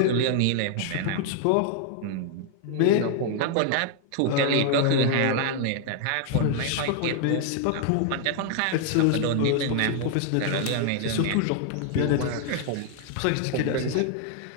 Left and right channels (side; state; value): both; different; correlation 0.00